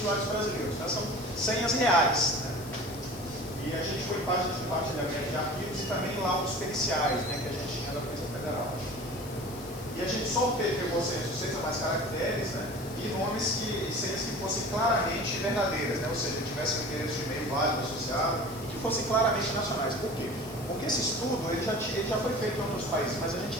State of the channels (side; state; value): left; noise; hiss, 17 dB below the sound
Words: brasileiros. Tá? São senhas reais. Né? E a gente foi parte de compartilhamento de arquivos e também laudos periciais, né, que a gente tinha da Polícia Federal. E a gente só pegou senhas de 6 ou mais caracteres, né, e nomes e senhas que fossem claramente verdadeiras, né, ou seja, que tivessem um endereço de e-mail válido associado e que fossem claramente nacionais. Por quê? Porque esse estudo ele já foi feito em outros países, mas a gente